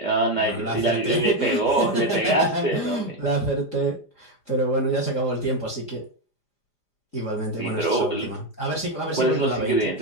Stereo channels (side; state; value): right; late; 5.0 ms